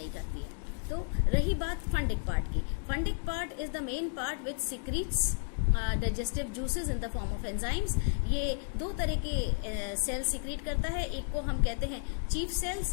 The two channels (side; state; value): right; silent; 56 dB below the other